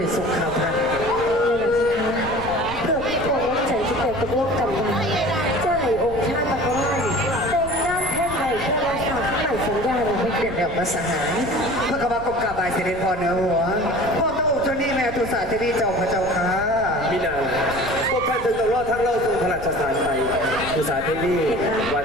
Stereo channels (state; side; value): noise; left; rumble, 13 dB below the sound